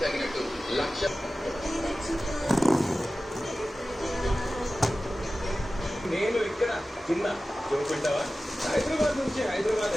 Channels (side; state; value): both; normal; correlation 0.95